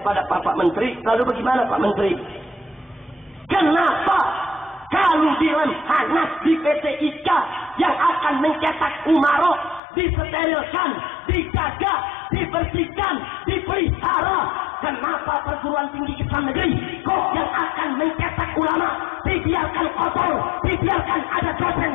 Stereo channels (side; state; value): right; drops out; at 9.8 s